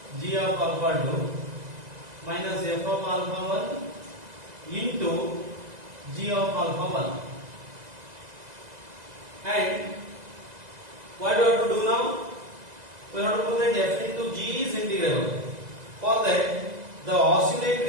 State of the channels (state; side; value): late; left; 2.0 ms